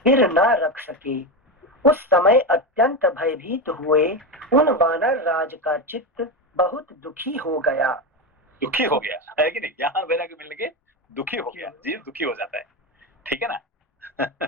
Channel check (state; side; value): normal; both; correlation 0.15